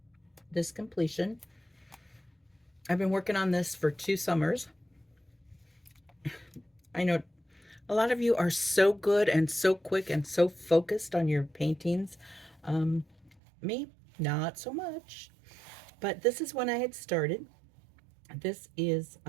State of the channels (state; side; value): drops out; left; at 13.4 s